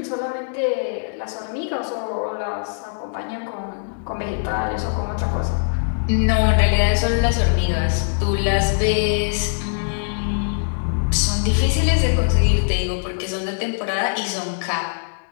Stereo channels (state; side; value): silent; right; 61 dB below the other